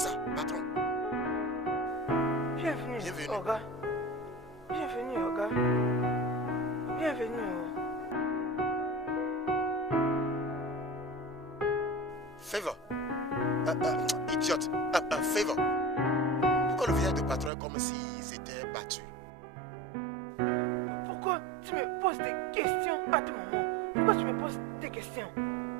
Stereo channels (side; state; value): left; drops out; at 17.5 s